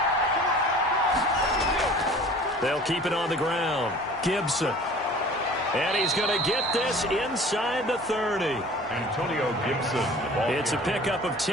They'll keep it on the ground. Gibson. And he's going to get this inside the 30. Antonio Gibson. It's a pickup of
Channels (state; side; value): normal; both; correlation 0.45